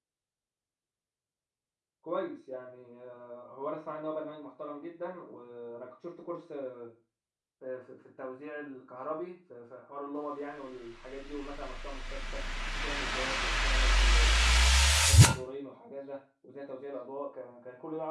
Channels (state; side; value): identical; both; correlation 1.00